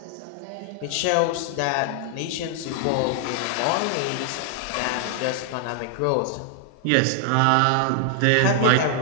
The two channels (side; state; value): both; different; correlation 0.00